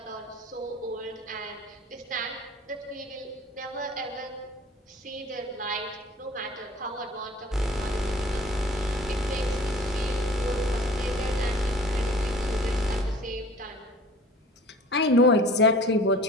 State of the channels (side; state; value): both; normal; correlation 0.47